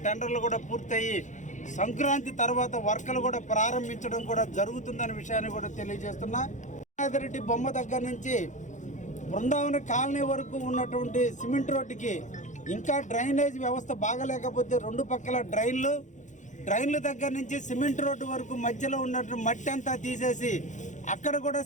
టెండర్లు కూడా పూర్తయి సంక్రాంతి తర్వాత వర్కలు కూడా ప్రారంభించడం కూడా జరుగుతుందనే విషయాన్ని కూడా తెలియజేస్తున్నా. యానాదిరెడ్డి బొమ్మ దగ్గర నుంచి బృందావన కాలనీ వరకు ఉన్నటువంటి సిమెంట్ రోడ్డుకి ఇంకా డ్రైనేజ్ వ్యవస్థ బాగలేకపోతే 2 పక్కల డ్రైన్ల దగ్గర నుంచి సిమెంట్ రోడ్డు వరకు మధ్యలో ఉన్నటువంటి మట్టి అంతా తీసేసి అక్కడ కూడా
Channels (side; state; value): right; late; 0.36 ms